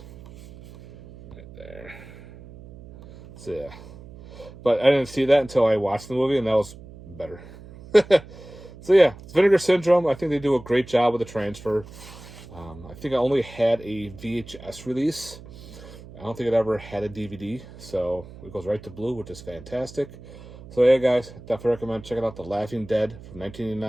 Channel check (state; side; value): noise; right; hum, 18 dB below the sound